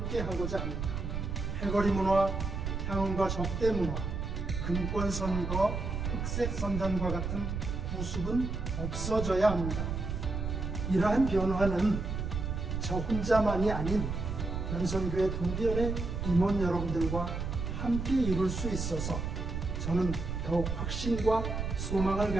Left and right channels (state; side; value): noise; right; rumble, 3 dB below the sound